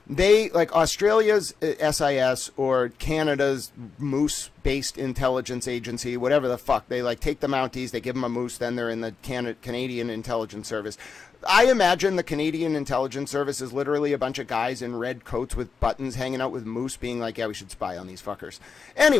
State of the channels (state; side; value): quieter; right; 5.4 dB